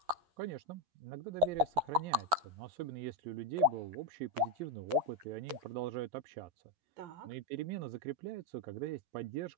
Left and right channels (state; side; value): late; left; 11 ms